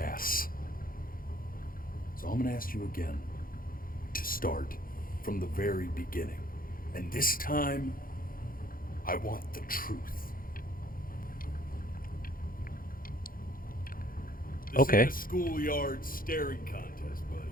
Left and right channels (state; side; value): late; right; 0.41 ms